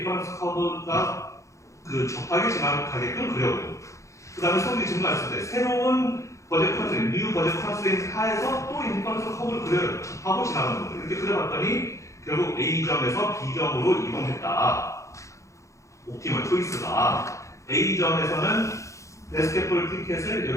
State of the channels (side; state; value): right; late; 0.15 ms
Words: 커브가 그 접하게 지나가게끔 그려보고 그 다음에 소득이 증가했을 때 새로운 버젯 컨스트레인트, 뉴 버젯 컨스트레인트 하에서 또 인디퍼런스 커브를 그려요. 접하고 지나가는 거예요. 이렇게 그려봤더니 결국 A점에서 B점으로 이동했다. 옵티멀 초이스가 A점에서는 베스켓볼 티켓을